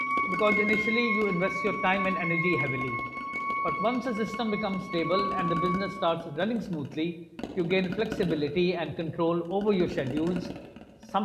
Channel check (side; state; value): both; identical; correlation 1.00